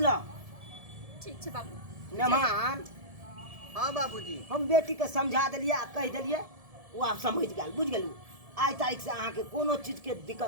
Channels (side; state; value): left; late; 1.7 ms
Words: ठीक छै बाबू। मेहमान हाँ बाबूजी हम बेटी के समझा देलिए आ कह देलिए वो आप समझ गेल बुझ गेलू। आइ तारीख से अहाँ के कोनो चीज के